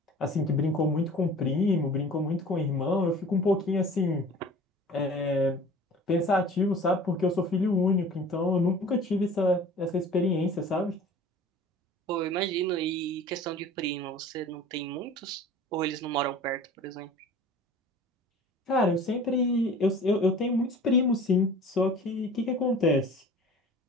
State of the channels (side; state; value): both; normal; correlation 0.44